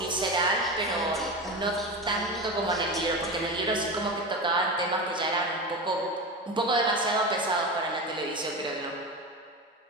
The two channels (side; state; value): both; normal; correlation 0.24